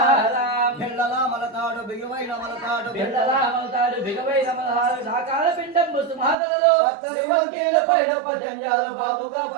బిళ్ళల మలతాడు బిగువైన మలతాడు బిళ్ళల మలతాడు బిగువైన మలతాడు సాకాల పిండం ముసుమాతలలో పత్తరి వంకేల పైన పజంజాలు బాబుగా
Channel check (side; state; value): left; drops out; at 6.4 s